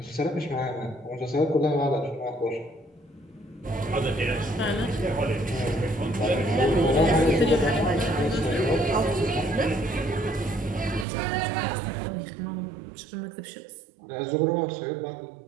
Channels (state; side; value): drops out; left; at 11.1 s